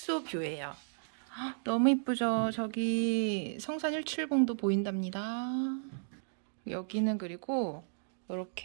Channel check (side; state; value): left; silent; digital silence